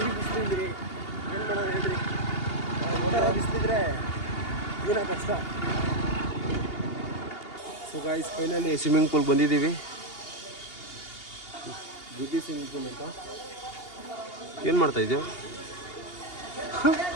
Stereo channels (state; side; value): late; right; 2.8 ms